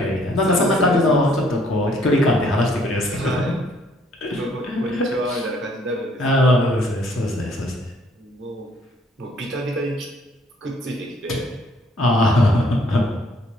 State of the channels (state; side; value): normal; both; correlation 0.63